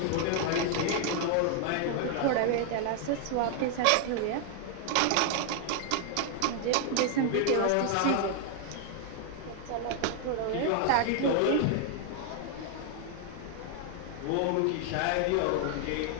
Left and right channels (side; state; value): both; different; correlation 0.00